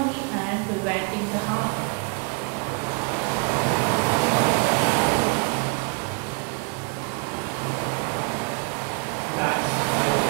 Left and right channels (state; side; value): quieter; left; 36.3 dB